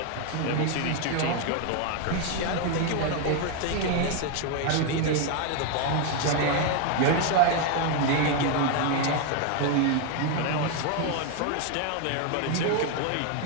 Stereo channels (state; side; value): different; both; correlation 0.01